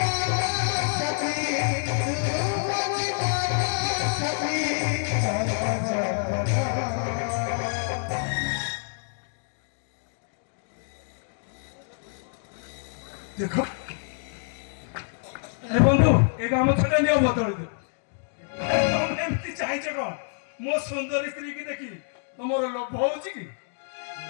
ଦେଖ ଆରେ ବନ୍ଧୁ ଏ ଗାମୁଛାଟା ନିଅ ବଦଳି ଦିଅ। ତମେ ଏମିତି ଚାହିଁଛ କଣ? ମୋ ସୁନ୍ଦରୀ ସ୍ତ୍ରୀ କି ଦେଖି ତମର ଲୋଭ ହଉଛି କି?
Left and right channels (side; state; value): right; silent; digital silence